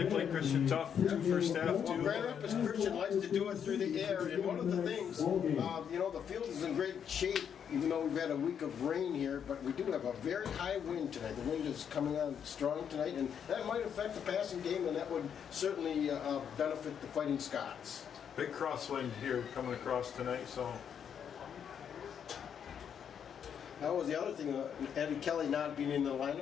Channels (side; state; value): right; quieter; 8.0 dB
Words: played Christian tough, 2 first half. Well, Grand Rapids Christian likes to do it through the air, and one of the things, you know, the field is in great shape, even though we've had a week of rain here, but we do have a very high wind tonight. The wind is coming on strong tonight, and that might affect the passing game, and that would certainly benefit the Fighting Scots. Big crosswind here coming across tonight, so. That was the other thing, Eddie Kelly not being in the